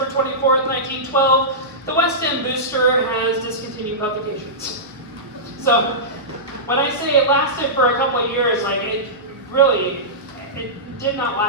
24th, 1912. The West End Booster has discontinued publications. So when I say it lasted for a couple of years, it did not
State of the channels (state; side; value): normal; both; correlation -0.16